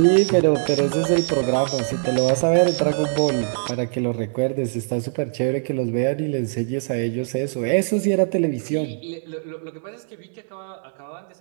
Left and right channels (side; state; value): left; silent; 63 dB below the other